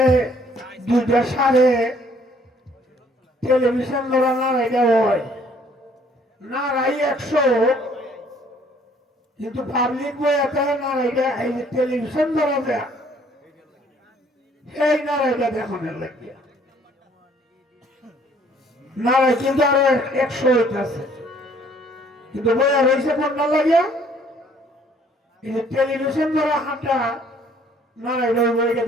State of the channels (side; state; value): both; normal; correlation 0.60